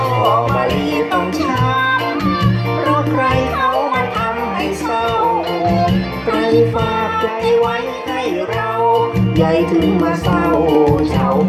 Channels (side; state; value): both; identical; correlation 1.00